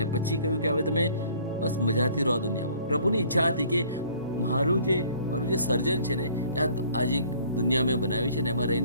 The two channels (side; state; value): both; inverted; correlation -0.56